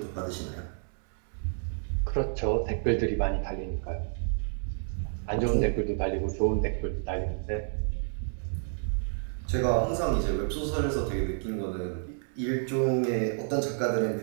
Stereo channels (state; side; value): silent; left; 58 dB below the other